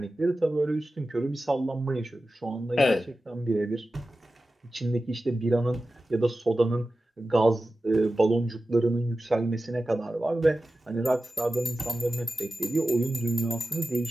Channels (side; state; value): both; normal; correlation 0.94